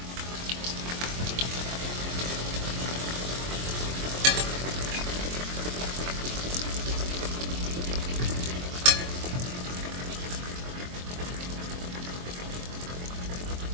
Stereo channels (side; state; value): left; late; 23 ms